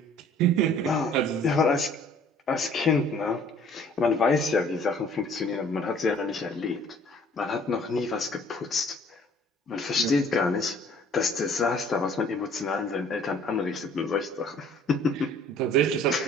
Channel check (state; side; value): normal; both; correlation 0.54